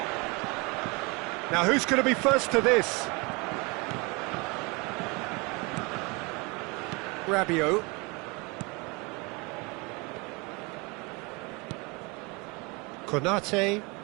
Now who's going to be first to this? Rabiot. Konate.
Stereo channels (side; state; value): left; quieter; 28.1 dB